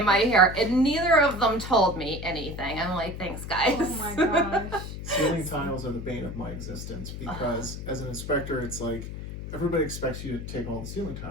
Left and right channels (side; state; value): left; noise; hum, 8 dB below the sound